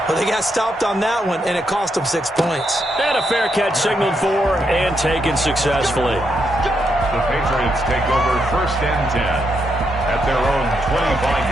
Well, they got stopped on that one, and it cost them 6 points. And a fair catch signaled for and taken successfully. The Patriots take over 1st and 10 at their own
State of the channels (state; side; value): normal; both; correlation 0.80